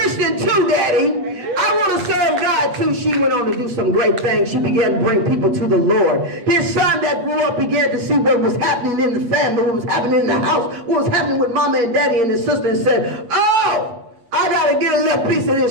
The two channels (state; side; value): late; left; 8.3 ms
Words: too, Daddy. I want to serve God too. She went on to do some great things. She began to bring people to the Lord. His son that grew up began to see what was happening in the family, what was happening in the house, what was happening with Mama and Daddy and his sister, and said, oh, I got to get a little piece of